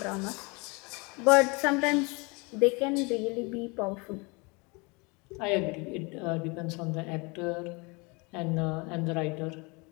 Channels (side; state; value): right; quieter; 28.7 dB